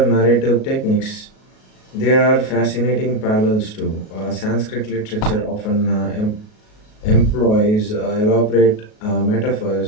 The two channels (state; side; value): late; right; 37 ms